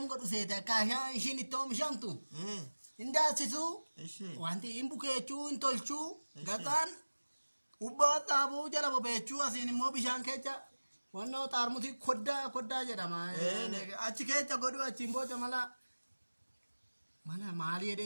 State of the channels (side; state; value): both; inverted; correlation -1.00